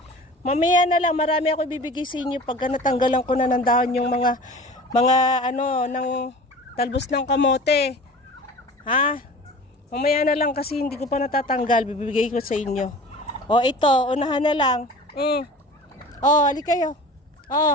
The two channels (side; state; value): both; normal; correlation 0.40